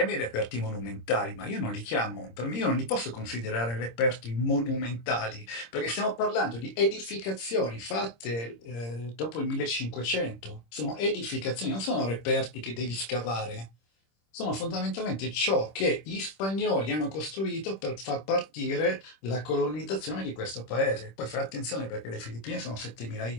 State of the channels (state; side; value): late; right; 26 ms